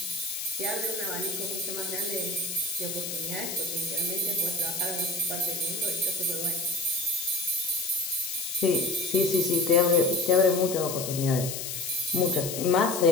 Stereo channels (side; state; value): left; noise; hiss, 5 dB below the sound